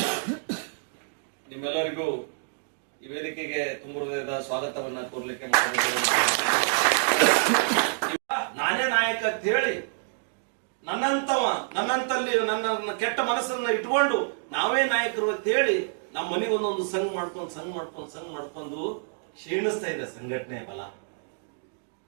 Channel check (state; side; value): silent; left; digital silence